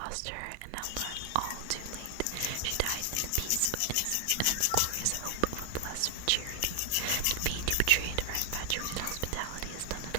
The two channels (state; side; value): different; both; correlation 0.00